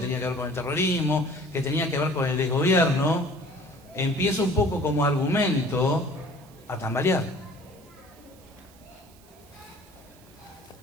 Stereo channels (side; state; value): right; noise; hiss, 27 dB below the sound